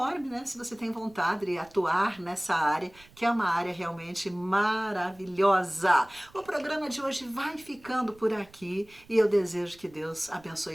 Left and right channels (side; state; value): right; noise; rumble, 26 dB below the sound